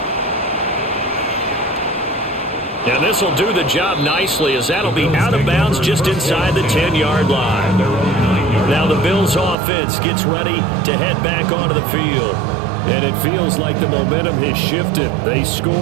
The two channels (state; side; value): drops out; left; at 9.6 s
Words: And this will do the job nicely as that'll be out of bounds just inside the 10-yard line. Now the Bills offense gets ready to head back onto the field. And it feels like the momentum has shifted. They